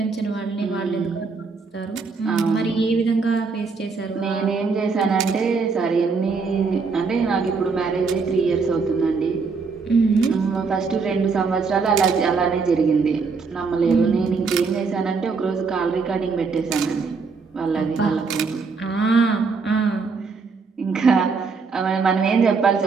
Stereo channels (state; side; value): quieter; left; 4.8 dB